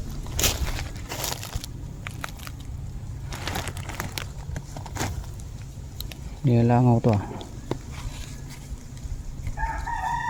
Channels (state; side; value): identical; both; correlation 1.00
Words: Nilalangaw to ah.